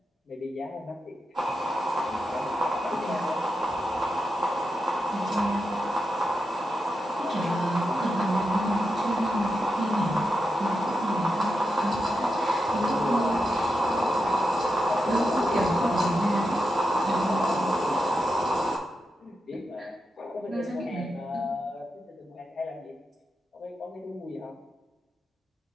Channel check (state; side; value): normal; both; correlation 0.87